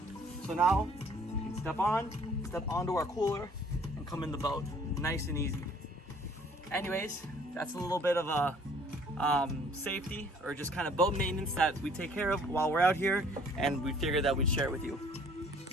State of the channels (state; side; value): normal; both; correlation 0.57